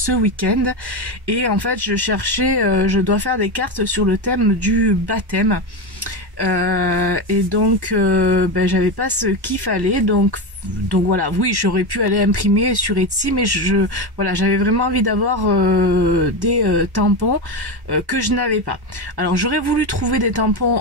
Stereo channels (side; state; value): left; late; 1.1 ms